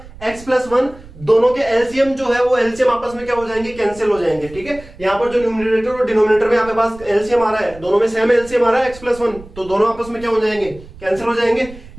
x प्लस वन, दोनों के एलसीएम जो है वो एलसीएम आपस में क्या हो जाएंगे, कैंसिल हो जाएंगे। ठीक है, यहाँ पर जो न्यूमरेटर और डिनोमिनेटर में आपके पास एलसीएम आ रहा है, दोनों में सेम एलसीएम आ रहा है x प्लस वन, तो दोनों आपस में क्या हो जाएंगे, कैंसिल हो जाएंगे।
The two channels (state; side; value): noise; right; rumble, 19 dB below the sound